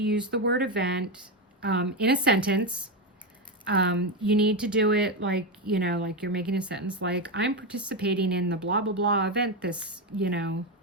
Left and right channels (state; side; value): normal; both; correlation 0.10